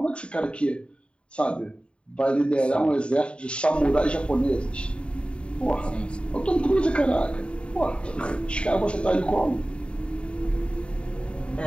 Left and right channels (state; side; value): late; right; 0.056 ms